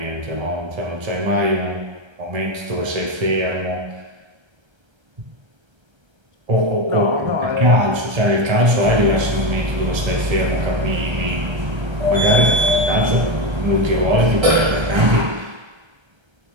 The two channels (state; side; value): late; left; 1.3 ms